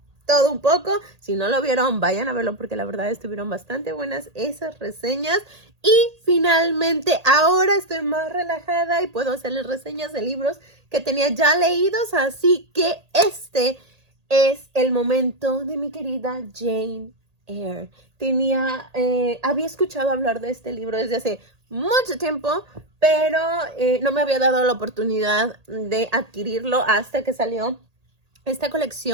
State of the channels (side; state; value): left; late; 1.8 ms